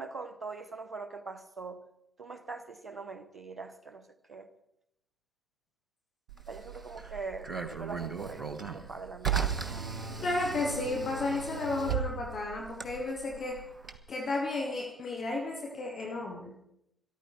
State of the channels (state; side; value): normal; both; correlation 0.52